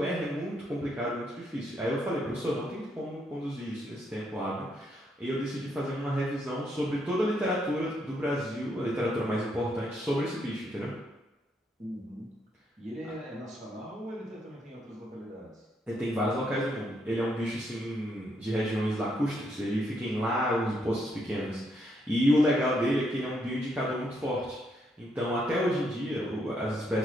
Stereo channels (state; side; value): normal; both; correlation 0.76